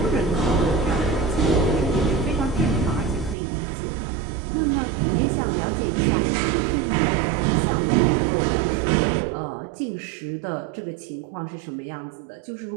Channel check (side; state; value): left; drops out; at 3.4 s